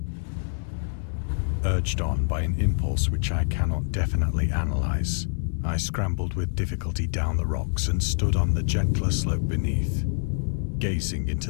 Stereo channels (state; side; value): silent; right; 61 dB below the other